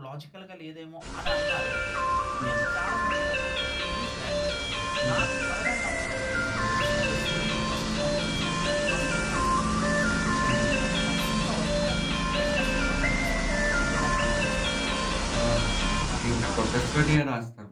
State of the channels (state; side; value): identical; both; correlation 1.00